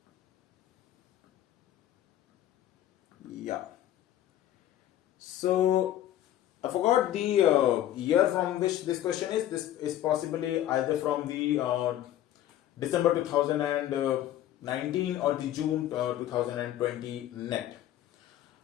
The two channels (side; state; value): right; quieter; 12.4 dB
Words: So I forgot the year from which this question is. This is possibly either from the December 2019 or the June 2020 net.